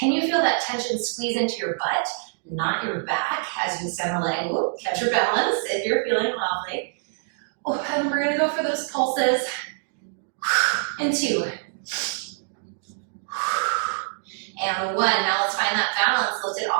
you feel that tension squeeze into your butt, not your back, as you extend the leg? Ooh, catch your balance if you're feeling wobbly. Oh, and we're gonna go for those pulses. And 2. And 1. Now let's find that balance. Lift it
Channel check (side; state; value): left; silent; digital silence